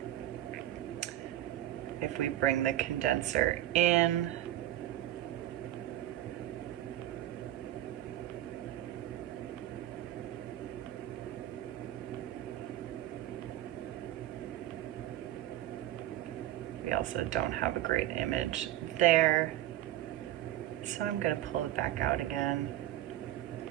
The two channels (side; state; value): left; quieter; 13.5 dB